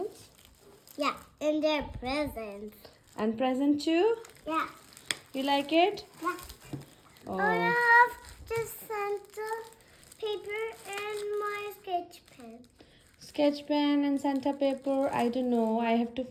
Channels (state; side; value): identical; both; correlation 1.00